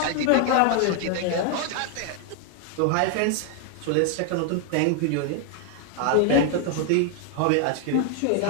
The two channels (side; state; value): both; different; correlation 0.00